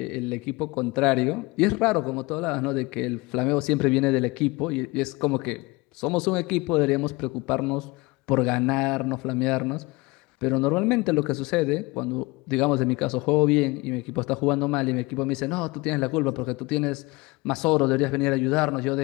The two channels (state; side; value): quieter; right; 23.7 dB